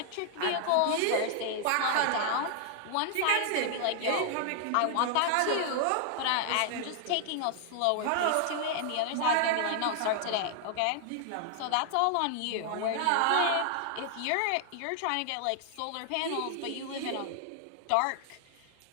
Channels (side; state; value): both; different; correlation 0.00